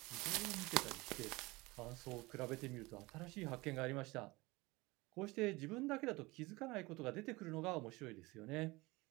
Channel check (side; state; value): left; quieter; 22.4 dB